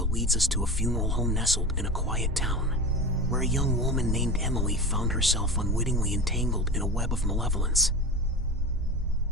leads us to a funeral home nestled in a quiet town, where a young woman named Emily found herself unwittingly entangled in a web of malevolence.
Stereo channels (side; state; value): both; normal; correlation 0.30